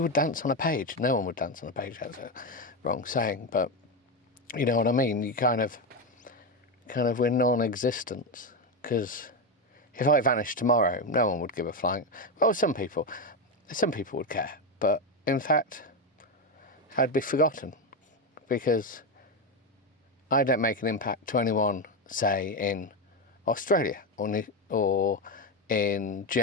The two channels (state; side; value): normal; both; correlation 0.11